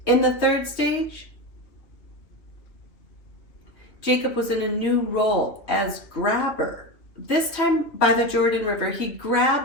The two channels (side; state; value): right; late; 2.8 ms